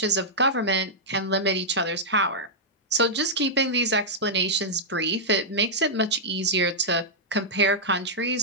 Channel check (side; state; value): both; normal; correlation -0.08